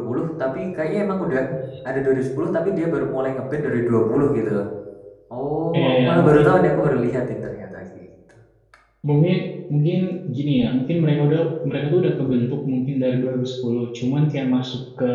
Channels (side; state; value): both; identical; correlation 1.00